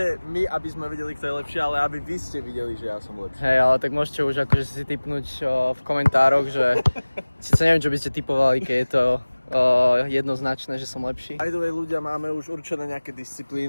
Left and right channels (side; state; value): both; inverted; correlation -1.00